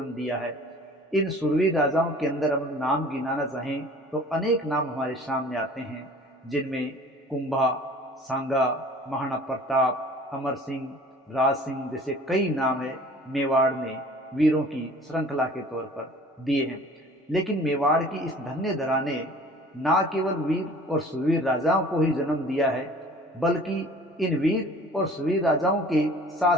दिया है। इन शूरवीर राजाओं के अंदर हम नाम गिनाना चाहें तो अनेक नाम हमारे सामने आते हैं, जिनमें कुंभा, सांगा, महाराणा प्रताप, अमर सिंह, राज सिंह जैसे कई नाम है मेवाड़ ने वीरों की श्रृंखला के तौर पर दिए हैं। लेकिन मेवाड़ की इस धन्य धरा ने ना केवल वीर और सुरवीर राजाओं को ही जन्म दिया है, बल्कि इन वीर और सुरवीर राजाओं के साथ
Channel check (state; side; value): normal; both; correlation 0.48